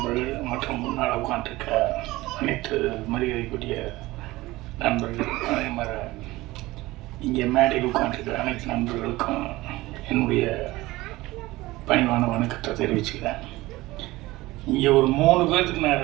மற்றும் முன்னால் உட்காந்துருக்க அனைத்து மரியாதைக்குரிய நண்பர்கள், அதே மாதிரி இங்கே மேடையில் உட்காந்துருக்க அனைத்து நண்பர்களுக்கும் என்னுடைய பணிவான வணக்கத்தை தெரிவிச்சுக்கிறேன். இங்கே ஒரு 3 பேர்த்துக்கு நான்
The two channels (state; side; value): quieter; left; 19.2 dB